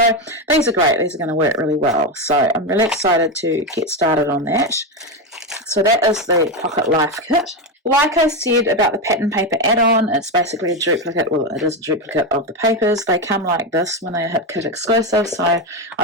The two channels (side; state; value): both; normal; correlation 0.12